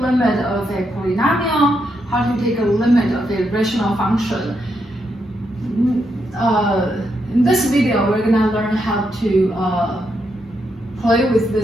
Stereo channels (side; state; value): both; normal; correlation 0.81